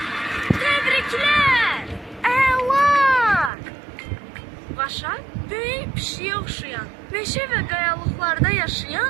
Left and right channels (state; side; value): drops out; left; at 3.5 s